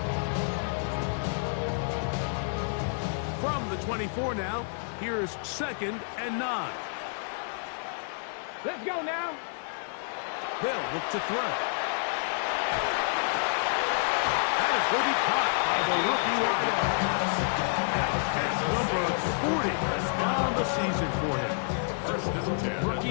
From the 24 now, here's second and 9. Let's go now. They'll look to throw. That is going to be caught by the rookie wideout. That's number 40 on the season for him. First and 10.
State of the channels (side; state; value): right; silent; 58 dB below the other